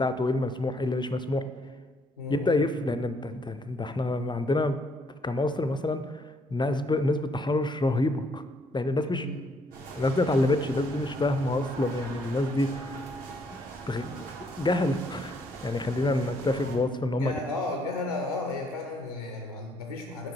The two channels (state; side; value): normal; both; correlation 0.69